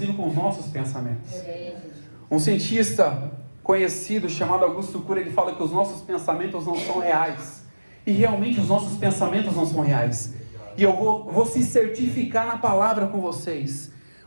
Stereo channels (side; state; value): both; inverted; correlation -1.00